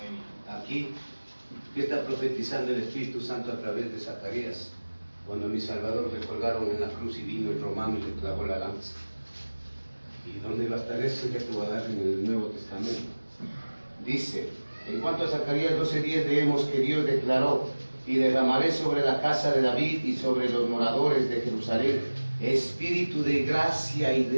Aquí, ¿qué está profetizando el Espíritu Santo a través de Zacarías? Cuando mi Salvador le colgaron en la cruz y vino el romano y le clavó la lanza. ¿Y dónde va a estar eso? Ya te voy a dar en el Nuevo Testamento. Dice, en cuanto a Zacarías 12:10, leemos que Dios declaró, y derramaré sobre la casa de David y sobre los moradores de Jerusalén espíritu de gracia y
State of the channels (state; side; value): inverted; both; correlation -1.00